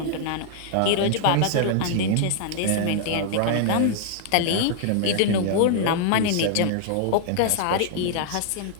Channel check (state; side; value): different; both; correlation -0.01